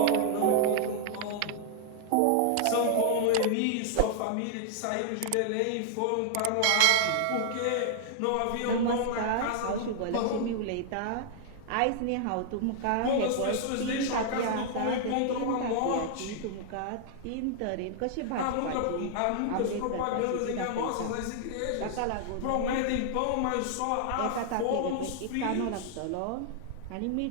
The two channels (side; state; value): both; different; correlation -0.01